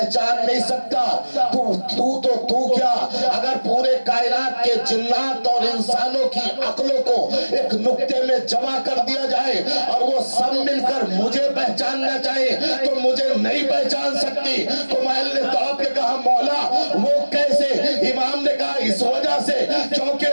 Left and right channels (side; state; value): both; inverted; correlation -1.00